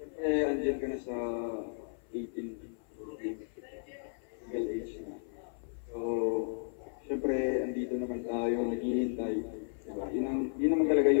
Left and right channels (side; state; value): right; silent; 55 dB below the other